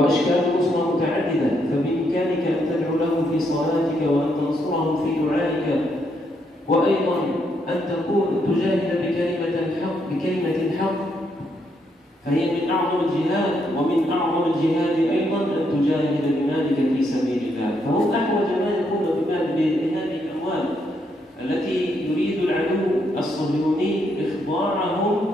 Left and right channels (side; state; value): both; normal; correlation 0.76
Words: النصرة متعددة، فبإمكانك أن تدعو لهم في صلاتك وأن تنصرهم في دعائك، وأيضا أن تجاهد بكلمة الحق، فهي من أعظم الجهاد. ومن أعظم الجهاد أيضا أن تجاهد بمالك في سبيل الله، فهم أحوج ما يكون بهذه الأموال التي يريد العدو الصهيوني إخضاعهم